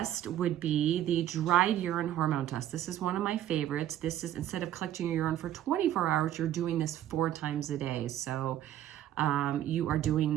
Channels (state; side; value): quieter; left; 12.0 dB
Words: would be the dried urine hormone test. This is one of my favorites. This is, instead of collecting your urine for 24 hours, you're doing this 4 times a day. So you are doing